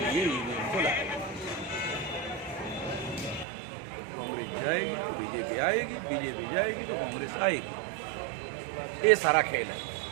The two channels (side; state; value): left; drops out; at 3.5 s